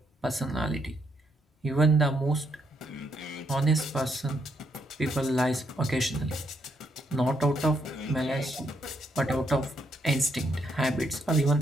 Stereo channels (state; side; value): normal; both; correlation 0.76